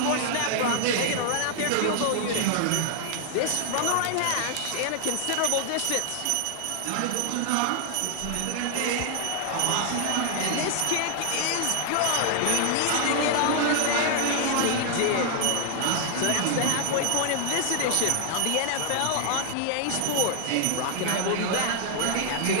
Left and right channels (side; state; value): both; different; correlation 0.00